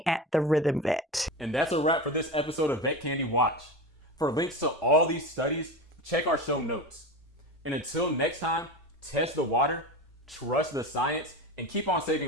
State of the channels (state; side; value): normal; both; correlation 0.25